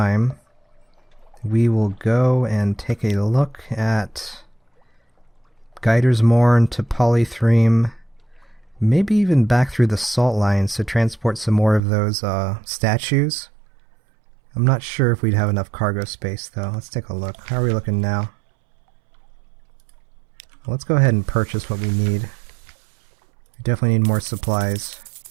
we will go and take a look at Gator's Morn to Polythreme, maybe even back through the salt lines to transport some more of those statues. I'm not sure if we'd have enough cargo space though. Let's take a look. How are we looking now? Well, let's go ahead and purchase what we need. We definitely need more supplies.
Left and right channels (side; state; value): left; drops out; at 11.8 s